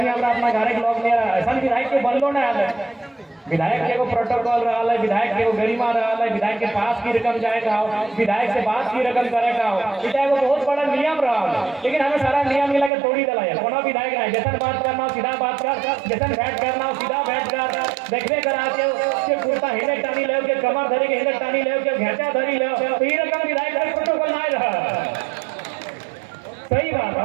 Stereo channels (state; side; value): drops out; left; at 12.9 s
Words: हमारा अपना घर के लोग नहीं रहा ऐसा विधायक के बनलो ना आए विधायक के को प्रोटोकॉल रहा है, विधायक के को गरिमा रहा है, विधायक के पास की रकम जाएगा विधायक से बात की रकम करेगा इतना वो बहुत बड़ा नियम रहा है। लेकिन हमें सारा नियम मिला के तोड़ी दिला है कोनो विधायक नहीं जैसा बात करना सीधा बात कर जैसा बैठ करना सीधा बैठ कर देखने करा के कुर्ता हिले टानी ले के कमर धरी के हिले टानी ले के घेचा धरी ले तो ये रकम विधायक का प्रोटोकॉल नहीं रहा। सही बात